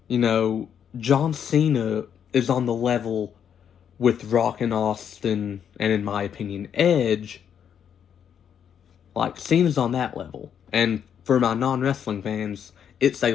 You know, John Cena is on the level with Rock and Austin, and in my opinion, Edge. Like, Cena's on that level. And for my non-wrestling fans, it's a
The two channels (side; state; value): right; quieter; 8.4 dB